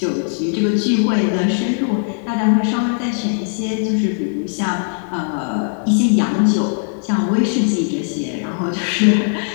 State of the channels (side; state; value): right; silent; digital silence